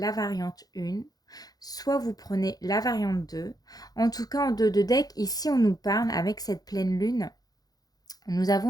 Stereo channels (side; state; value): right; late; 0.19 ms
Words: variante 1, soit vous prenez la variante 2. En tout cas, en deux de deck, ici on nous parle avec cette pleine lune. Nous